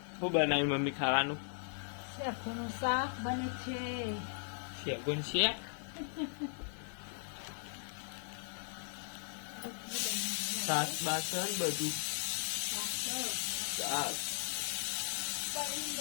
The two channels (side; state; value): right; silent; digital silence